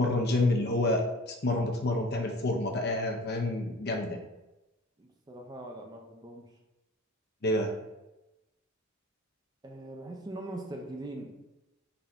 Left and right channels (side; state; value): both; normal; correlation 0.45